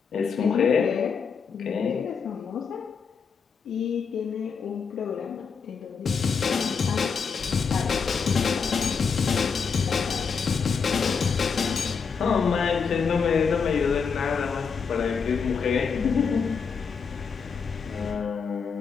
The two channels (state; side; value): quieter; right; 5.8 dB